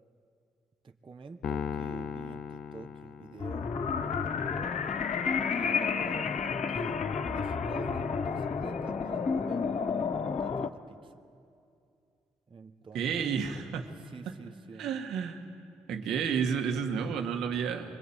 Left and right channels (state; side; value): normal; both; correlation 0.56